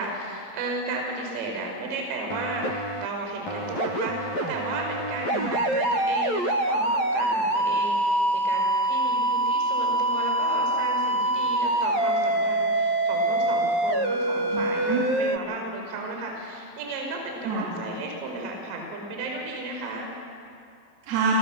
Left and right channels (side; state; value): right; late; 11 ms